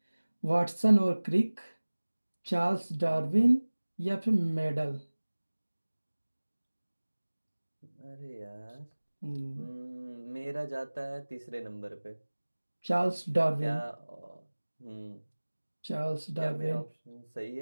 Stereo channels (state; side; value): inverted; both; correlation -1.00